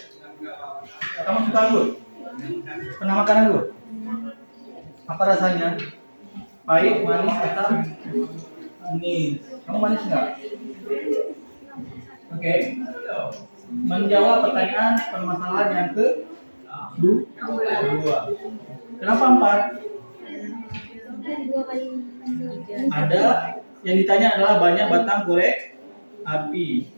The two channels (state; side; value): inverted; both; correlation -1.00